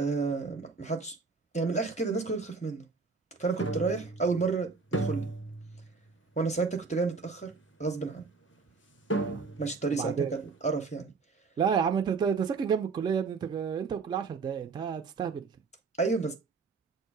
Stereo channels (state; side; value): quieter; left; 4.6 dB